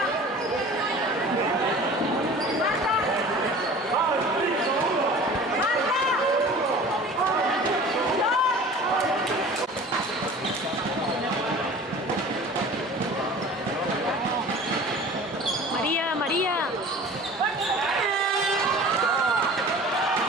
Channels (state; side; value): normal; both; correlation 0.42